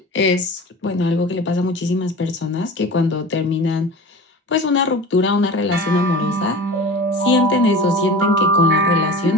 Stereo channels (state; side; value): normal; both; correlation 0.36